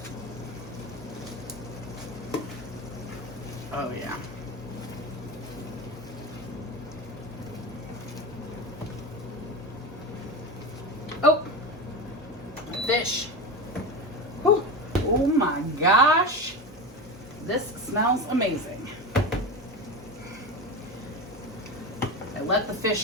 Oh yeah. Oh, fish. Whew. Oh my gosh. This smells amazing. I let the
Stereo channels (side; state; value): both; normal; correlation 0.23